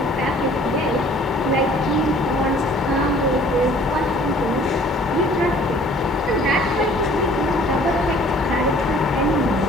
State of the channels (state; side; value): normal; both; correlation 0.54